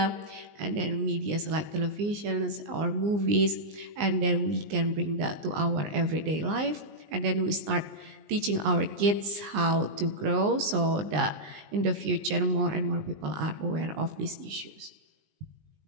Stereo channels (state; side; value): late; left; 19 ms